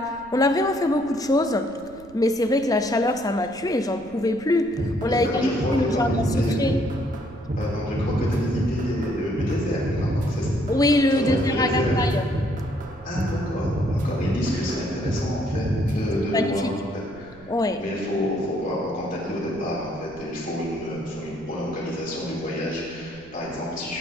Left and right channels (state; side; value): noise; right; rumble, 23 dB below the sound